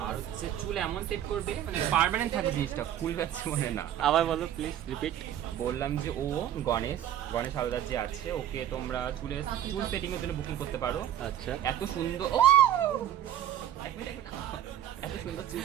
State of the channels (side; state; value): left; quieter; 11.1 dB